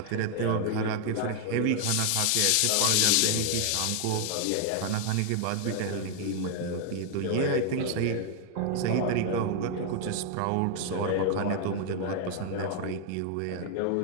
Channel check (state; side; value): different; both; correlation 0.00